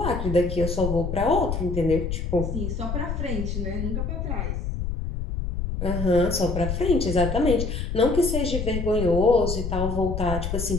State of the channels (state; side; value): noise; left; rumble, 3 dB below the sound